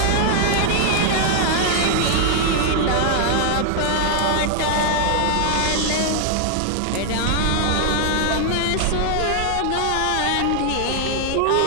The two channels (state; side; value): different; both; correlation 0.00